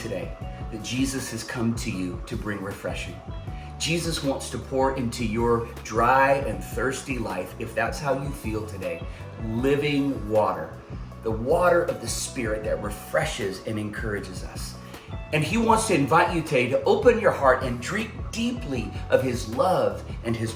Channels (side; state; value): both; identical; correlation 1.00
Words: that Jesus has come to you to bring refreshing. Jesus wants to pour into your dry and thirsty life, if that's how you feel today, living water, the water of the Spirit that refreshes and encourages us. And he wants to invite you today to open your heart and drink deeply of his love and his